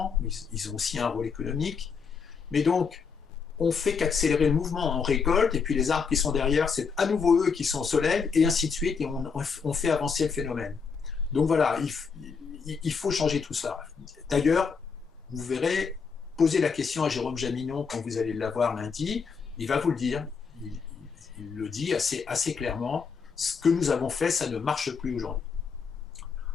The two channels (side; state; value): right; quieter; 5.6 dB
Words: ils ont aussi un rôle économique. Mais donc, on fait qu'accélérer le mouvement, on récolte, et puis les arbres qui sont derrière, c'est à nouveau eux qui sont au soleil, et ainsi de suite, et on fait avancer le phénomène. Donc voilà, il faut changer tout ça. D'ailleurs, vous verrez, posez la question à Jérôme Jaminon quand vous allez l'avoir lundi, il va vous le dire, il le dit assez clairement, ce que nous avons fait, ça ne marche plus aujourd'hui.